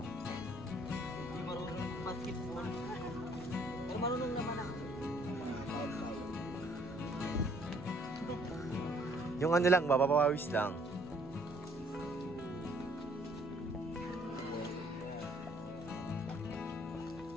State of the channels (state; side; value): normal; both; correlation 0.63